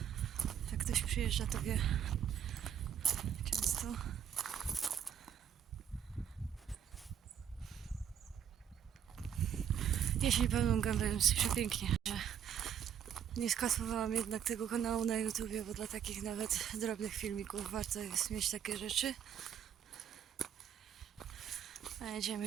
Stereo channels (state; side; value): quieter; left; 9.0 dB